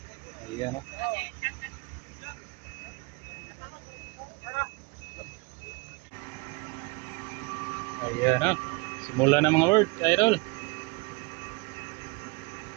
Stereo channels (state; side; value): quieter; left; 27.3 dB